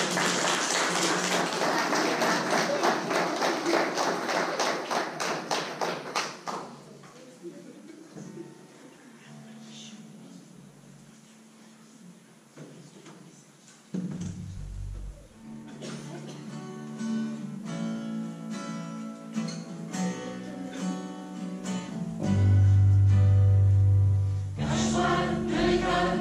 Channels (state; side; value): identical; both; correlation 1.00